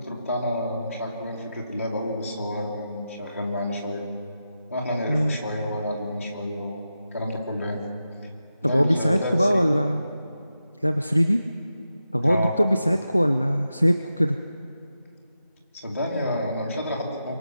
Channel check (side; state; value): both; inverted; correlation -0.89